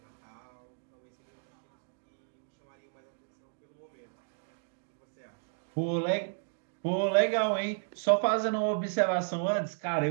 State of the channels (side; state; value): left; silent; digital silence